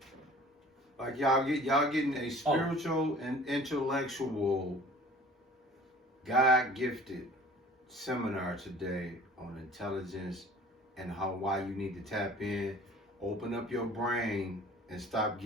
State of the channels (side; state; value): both; normal; correlation 0.47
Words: Like y'all getting a spiritual and intellectual, God gifted seminar today on intelligence and why you need to tap in, open up your brain, and stop